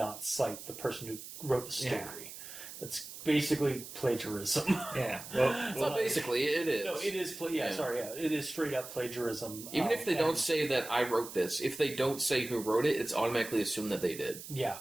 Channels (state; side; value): noise; right; hiss, 12 dB below the sound